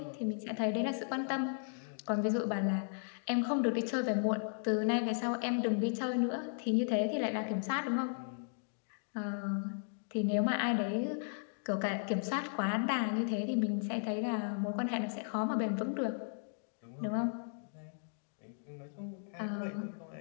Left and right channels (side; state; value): right; silent; digital silence